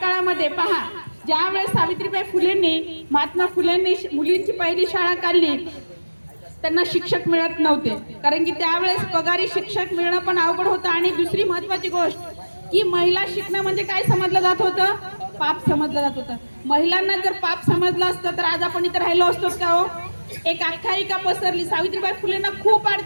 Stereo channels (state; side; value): inverted; both; correlation -1.00